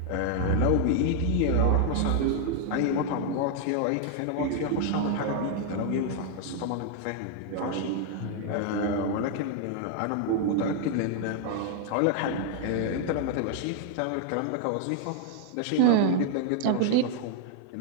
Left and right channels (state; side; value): different; both; correlation 0.00